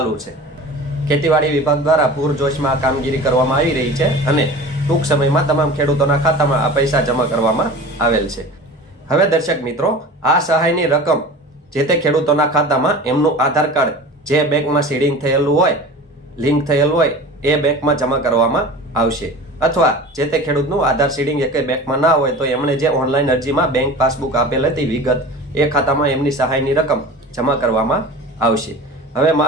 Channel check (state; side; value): normal; both; correlation 0.37